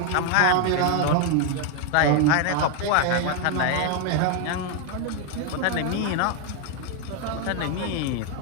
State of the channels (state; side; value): different; both; correlation 0.01